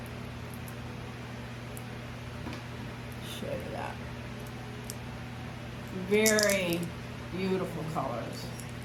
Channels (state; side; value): identical; both; correlation 1.00